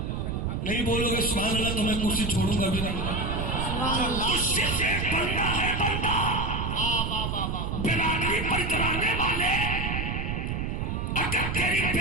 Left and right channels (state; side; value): noise; right; rumble, 2 dB below the sound